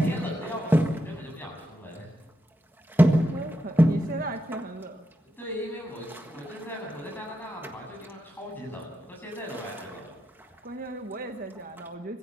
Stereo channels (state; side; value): normal; both; correlation 0.85